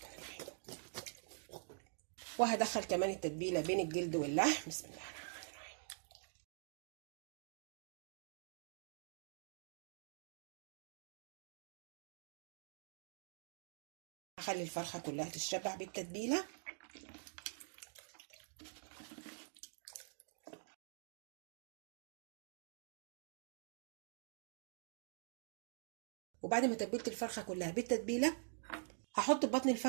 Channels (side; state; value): left; silent; digital silence